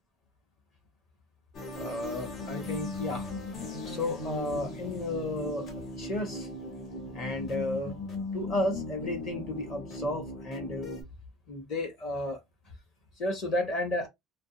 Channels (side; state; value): both; normal; correlation 0.37